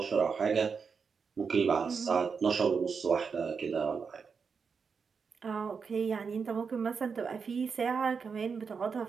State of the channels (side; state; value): left; quieter; 5.7 dB